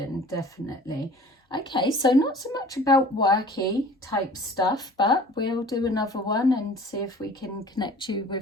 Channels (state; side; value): normal; both; correlation 0.46